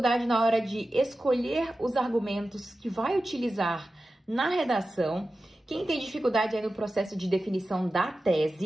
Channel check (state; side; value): normal; both; correlation 0.94